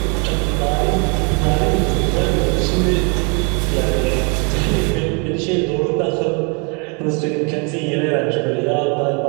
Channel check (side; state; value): left; quieter; 34.6 dB